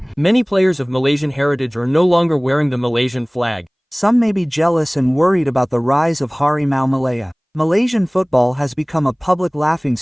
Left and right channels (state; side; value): identical; both; correlation 1.00